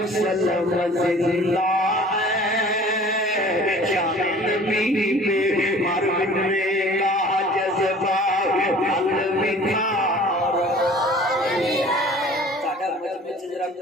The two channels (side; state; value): both; normal; correlation 0.47